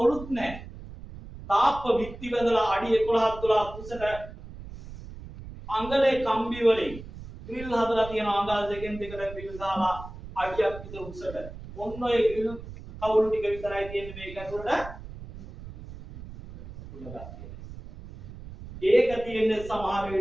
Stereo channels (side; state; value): right; noise; rumble, 14 dB below the sound